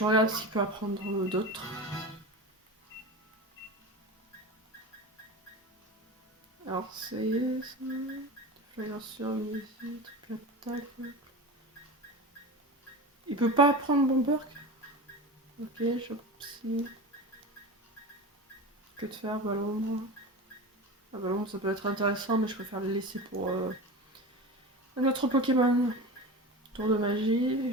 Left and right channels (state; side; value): normal; both; correlation 0.29